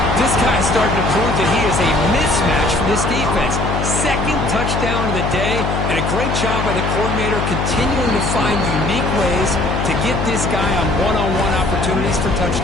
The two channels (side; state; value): left; noise; hum, 1 dB below the sound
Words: This guy's starting to prove that he is a mismatch for this defense. 2nd touchdown of the day, and a great job by the coordinator continuing to find unique ways to get this guy on one-on-one opportunities for